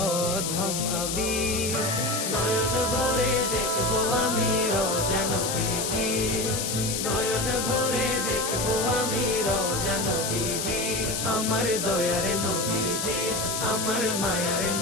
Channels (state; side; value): noise; left; hiss, 2 dB below the sound